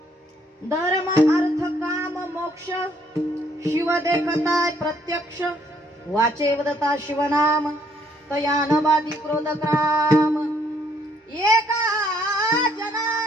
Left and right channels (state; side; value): normal; both; correlation 0.67